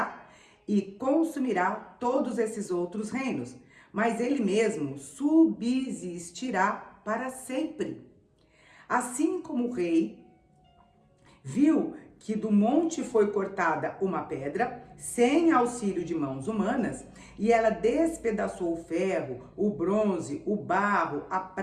e consumirá todos esses outros reinos, mas ele mesmo subsistirá para sempre. Assim como o rei viu que do monte foi cortada uma pedra, sem auxílio de mãos humanas, e ela despedaçou o ferro, o bronze, o barro, a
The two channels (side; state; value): both; identical; correlation 1.00